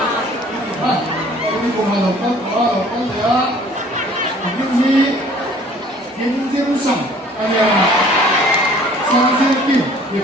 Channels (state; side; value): normal; both; correlation 0.53